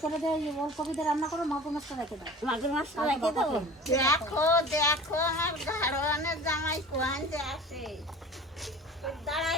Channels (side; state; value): both; normal; correlation 0.40